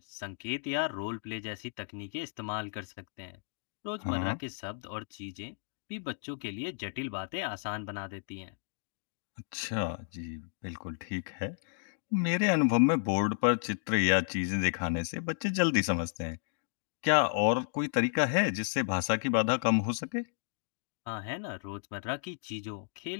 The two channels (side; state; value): right; silent; digital silence